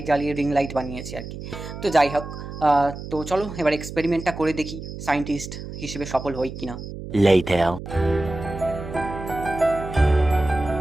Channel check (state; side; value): noise; right; hum, 10 dB below the sound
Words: জ্বালিয়ে রিং লাইট বানিয়েছি আর কি। তো যাই হোক, তো চলো এবার এক্সপেরিমেন্টটা করে দেখি সায়েন্টিস্ট হিসেবে সফল হই কিনা। Later.